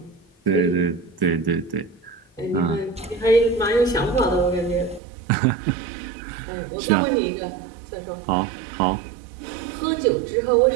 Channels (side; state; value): left; drops out; at 5.0 s